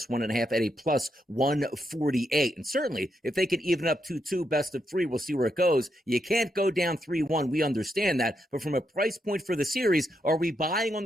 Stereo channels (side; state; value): both; normal; correlation 0.81